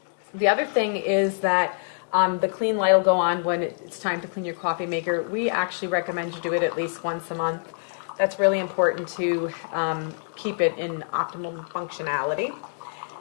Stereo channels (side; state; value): right; silent; digital silence